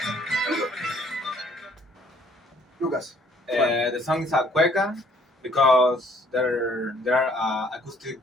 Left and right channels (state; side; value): normal; both; correlation 0.61